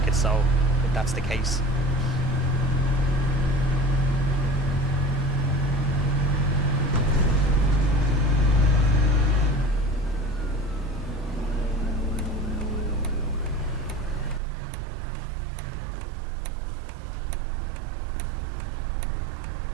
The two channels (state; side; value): drops out; left; at 14.4 s